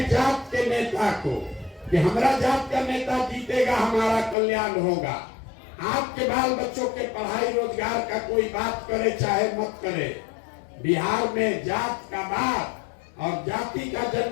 जात के नेता को कि हमारा जात का नेता जीतेगा, हमारा कल्याण होगा। आपके बाल बच्चों के पढ़ाई रोजगार का कोई बात करे चाहे मत करे, बिहार में जात का बात और जाति का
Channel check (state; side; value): drops out; right; at 4.4 s